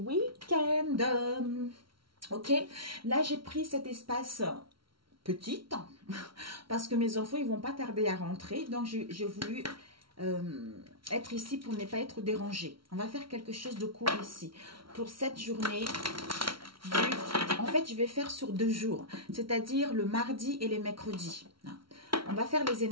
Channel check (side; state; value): left; late; 0.74 ms